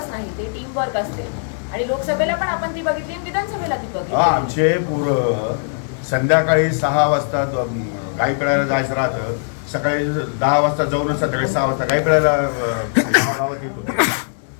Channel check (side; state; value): right; silent; digital silence